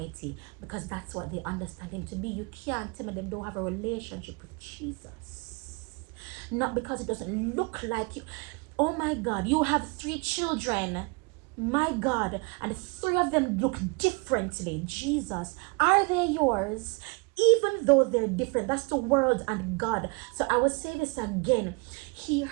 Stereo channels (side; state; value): left; quieter; 30.1 dB